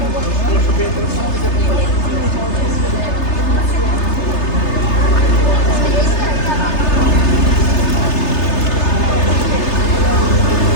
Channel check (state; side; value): late; right; 3.3 ms